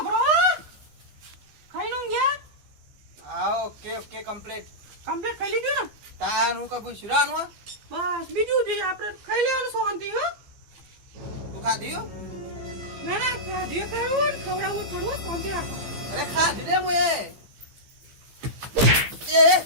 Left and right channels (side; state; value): left; late; 15 ms